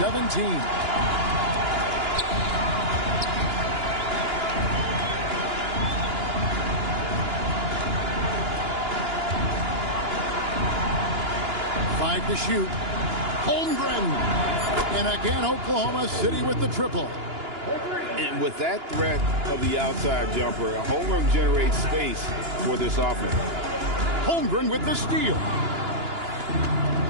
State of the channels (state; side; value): late; left; 2.9 ms